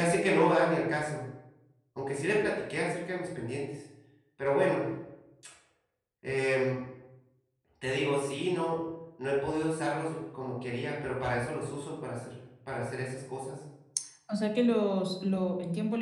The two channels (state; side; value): identical; both; correlation 1.00